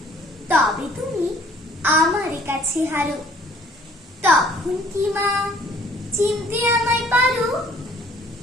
তবে তুমি আমার কাছে হারো, তখন কি মা চিনতে আমায় পারো?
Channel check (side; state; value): both; normal; correlation 0.57